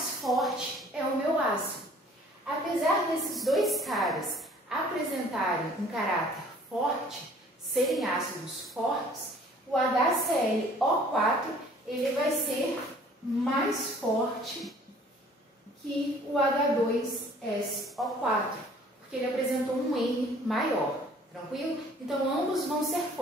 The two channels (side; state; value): both; normal; correlation 0.54